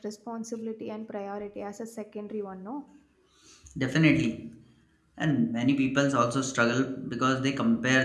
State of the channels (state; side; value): identical; both; correlation 1.00